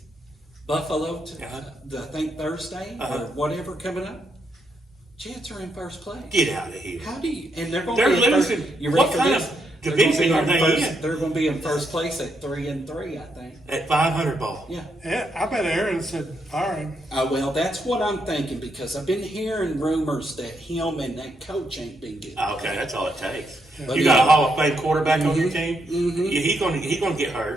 Buffalo, I think Thursday or whatever coming up, Jets are in first place. Get out of here. How do you? And they're going They're to be in losing. First, you ready What for kind this? of division are they in? They're going to be in first place at 3-3, I think. At 500 ball. Yeah. Yeah, I bet Aaron said fire him. Well, that's what I'm thinking because I've been hearing rumors that him and that coach ain't been good. Okay, that's all it takes. But You got yeah. a Hall of Fame quarterback on your team. Yeah, he's gonna get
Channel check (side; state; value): both; normal; correlation 0.79